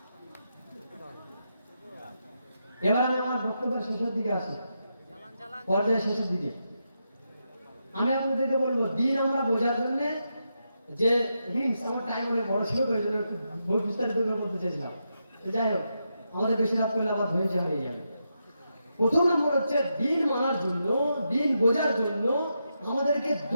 এবার আমি আমার বক্তব্যের শেষের দিকে আসি। পর্যায়ে শেষের দিকে আমি আপনাদেরকে বলবো দিন আমরা বোঝার জন্য যে হিংস আমার টাইম অনেক বড় ছিল তো এই জন্য একটু বিস্তারিত করে বলতে চাইছিলাম। তো যাই হোক আমাদের বেশি রাত করলে আবার ধৈর্য হয়ে যাবে। প্রথম নম্বর হচ্ছে দিন মানার জন্য, দিন বোঝার জন্য আমাদেরকে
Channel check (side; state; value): both; inverted; correlation -0.85